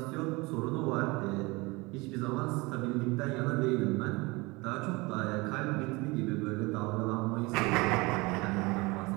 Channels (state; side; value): quieter; left; 24.4 dB